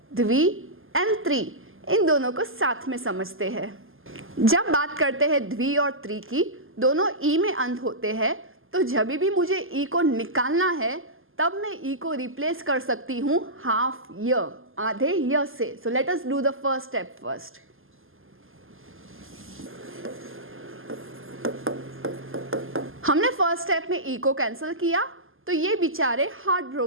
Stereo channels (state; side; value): late; left; 0.59 ms